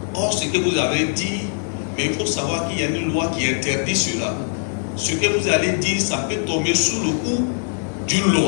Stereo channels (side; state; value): right; silent; digital silence